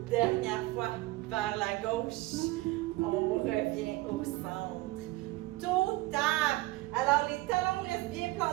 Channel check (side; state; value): left; quieter; 19.4 dB